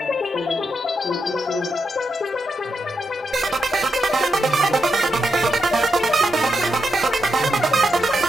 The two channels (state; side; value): normal; both; correlation 0.84